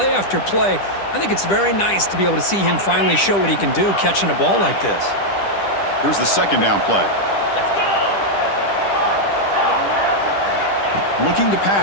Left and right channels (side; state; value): right; late; 10 ms